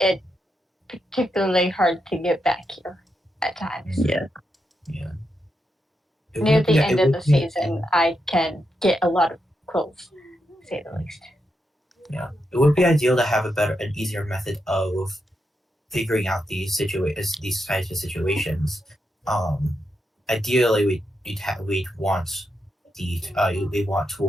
particularly hard to get back here at times. Yeah. Yeah. Near the end of the season, I can get a lot of quills, to say the least. Yeah, it would be ideal to have an easier method of figuring out these types of situations. Ideally, we'd want we want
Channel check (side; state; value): both; normal; correlation 0.84